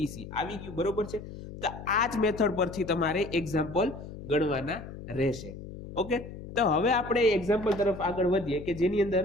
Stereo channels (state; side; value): noise; left; hum, 12 dB below the sound